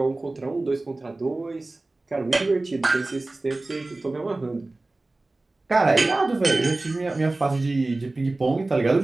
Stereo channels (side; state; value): left; quieter; 3.0 dB